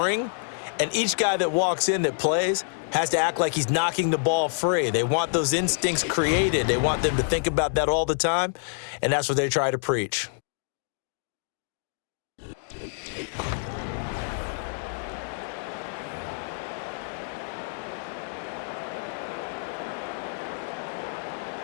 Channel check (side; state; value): right; silent; digital silence